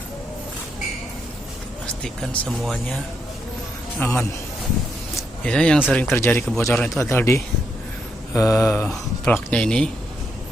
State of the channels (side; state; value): both; normal; correlation 0.79